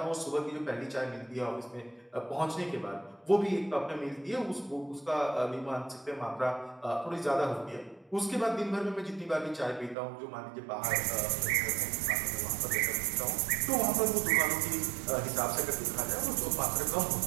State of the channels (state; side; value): drops out; left; at 10.0 s